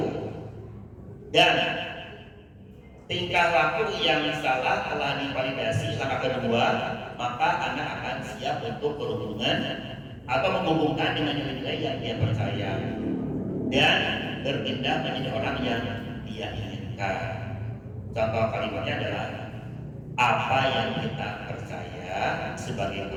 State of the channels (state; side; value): identical; both; correlation 1.00